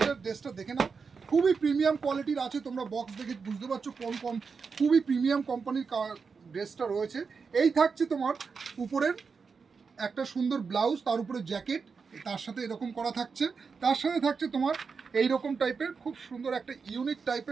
ড্রেসটা দেখে নাও। খুবই প্রিমিয়াম কোয়ালিটির আছে, তোমরা বক্স দেখে বুঝতে পারছো কোন খুবই প্রিমিয়াম কোম্পানির ড্রেসটা রয়েছে। এই থাকছে তোমার উপরের একটা সুন্দর ব্লাউজ, তার উপরে জ্যাকেট, তার সাথে এরকম করা থাকছে। তার সাথে থাকছে তোমার এইরকম টাইপের খুব সুন্দর একটা ইউনিক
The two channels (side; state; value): left; quieter; 5.3 dB